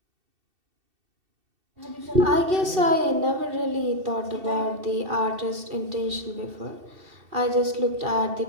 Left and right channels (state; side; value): late; left; 2.7 ms